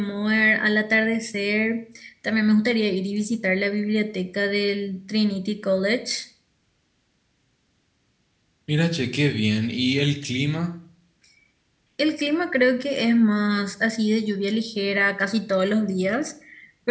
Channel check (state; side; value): identical; both; correlation 1.00